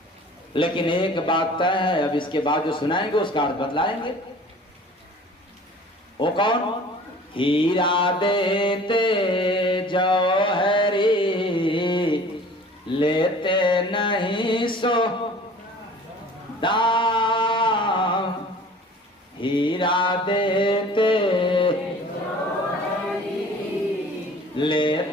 लेकिन एक बात तय है, अब इसके बाद जो सुनाएंगे उसका अर्थ बतलाएंगे। वो कौन? हीरा देते जौहरी, लेते नहीं सो दाम। हीरा देते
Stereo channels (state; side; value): normal; both; correlation 0.46